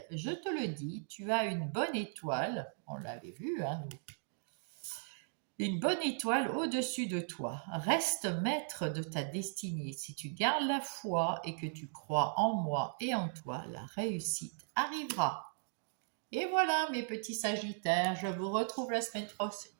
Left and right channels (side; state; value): left; silent; digital silence